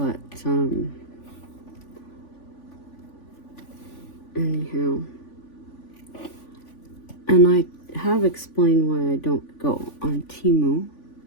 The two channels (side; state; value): right; late; 3.5 ms